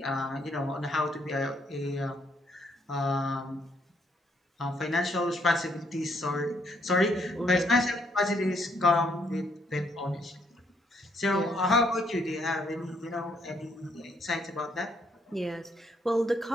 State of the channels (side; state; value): both; normal; correlation 0.71